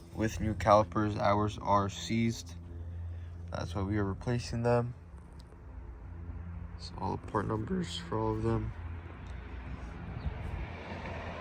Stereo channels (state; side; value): identical; both; correlation 1.00